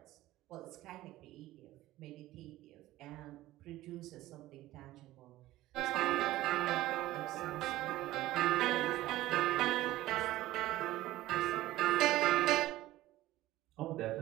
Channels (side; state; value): left; quieter; 16.2 dB